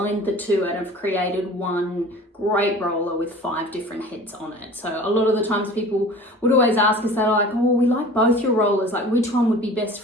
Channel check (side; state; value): both; normal; correlation 0.42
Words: the two and have created one great roller with 5 different heads on it. So a lot of the times people would always ask us, they're like, oh, we like both your rollers, like which one would be best